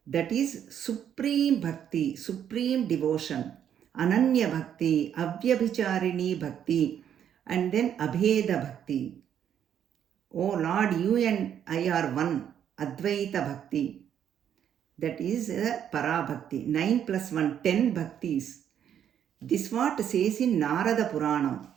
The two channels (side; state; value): left; quieter; 9.3 dB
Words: That is supreme bhakti, supreme devotion. Ananya bhakti, Avyabhicharini bhakti, and then Abheda bhakti. Oh Lord, you and I are one. Advaita bhakti. That is Para bhakti. 9 plus 1, 10 bhaktis. This what says in Narada Purana.